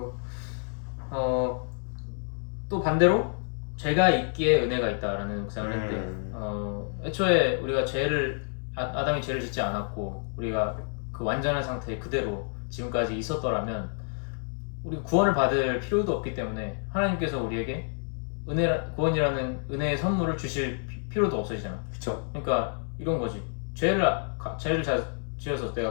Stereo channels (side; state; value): right; silent; 59 dB below the other